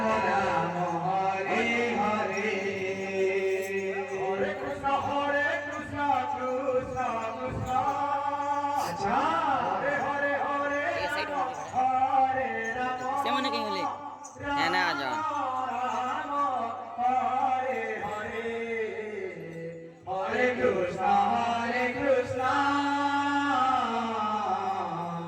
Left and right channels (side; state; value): both; identical; correlation 1.00